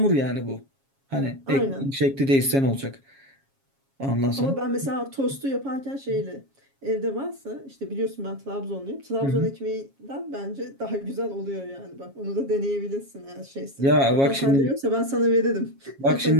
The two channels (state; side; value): late; left; 7.3 ms